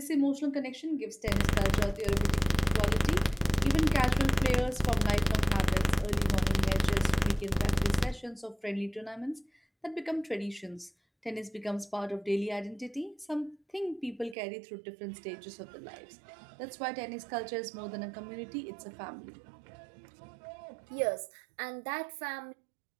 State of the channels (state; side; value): drops out; left; at 14.4 s